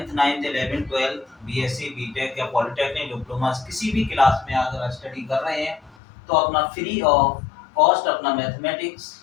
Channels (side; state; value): right; drops out; at 6.0 s